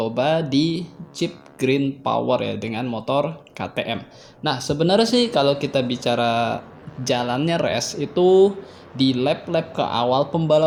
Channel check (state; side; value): identical; both; correlation 1.00